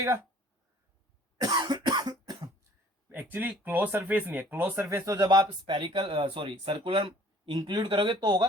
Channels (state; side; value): normal; both; correlation 0.53